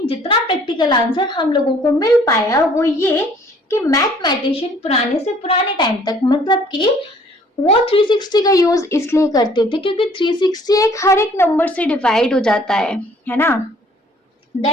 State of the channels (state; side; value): normal; both; correlation 0.58